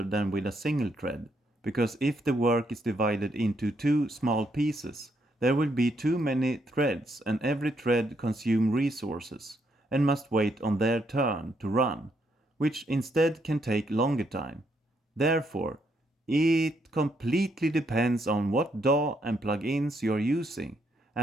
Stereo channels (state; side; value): normal; both; correlation 0.75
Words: than with a single thread, because if the work is divided into two small pieces, there will be too many threads and every thread consumes resources and must wait on their turn to run, which instead can take longer time. Therefore, it completely depends on what DAW and plugins you are using,